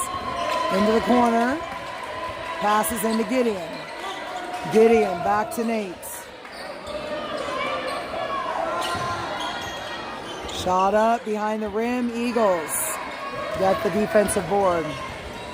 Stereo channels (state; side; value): identical; both; correlation 1.00